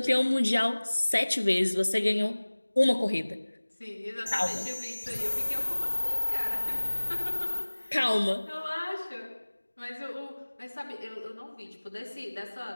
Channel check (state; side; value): inverted; both; correlation -1.00